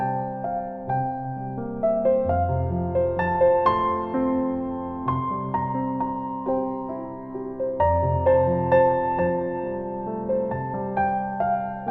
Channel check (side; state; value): both; identical; correlation 1.00